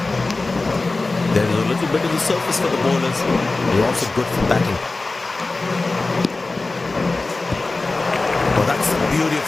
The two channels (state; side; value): quieter; right; 3.4 dB